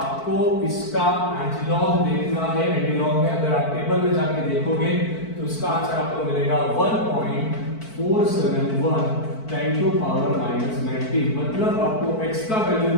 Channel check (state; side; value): late; right; 4.5 ms